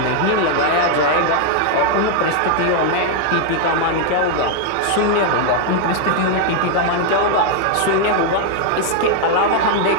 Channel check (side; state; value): both; different; correlation 0.00